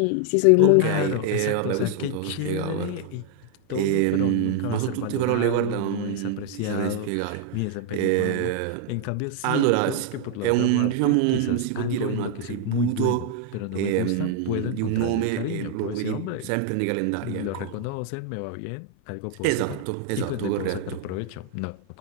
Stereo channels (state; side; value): different; both; correlation 0.00